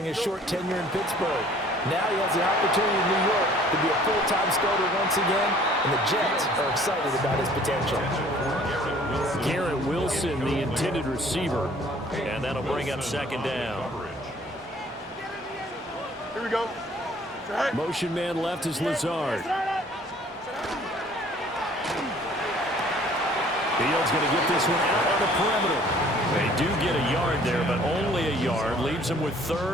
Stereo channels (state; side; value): normal; both; correlation 0.55